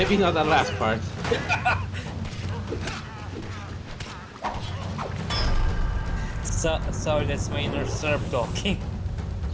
not that last part. Sorry, that's my inner Serb talking.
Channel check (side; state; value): both; identical; correlation 1.00